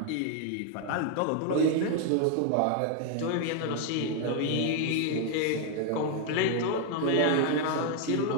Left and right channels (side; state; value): both; different; correlation 0.00